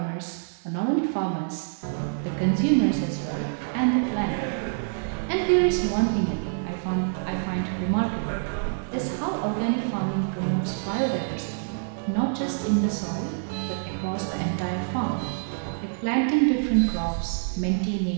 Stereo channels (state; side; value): silent; left; 61 dB below the other